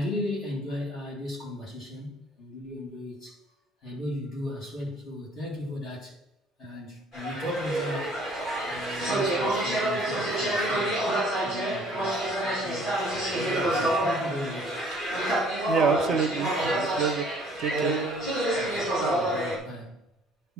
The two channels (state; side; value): normal; both; correlation 0.57